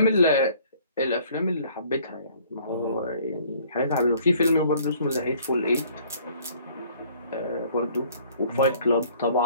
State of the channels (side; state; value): both; inverted; correlation -0.56